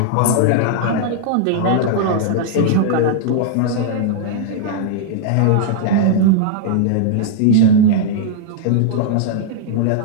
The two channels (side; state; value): both; different; correlation -0.01